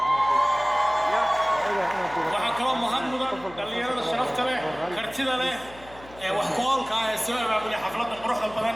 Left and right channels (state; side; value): noise; left; hum, 21 dB below the sound